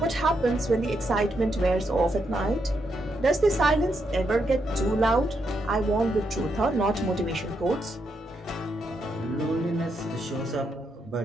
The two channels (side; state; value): both; normal; correlation 0.80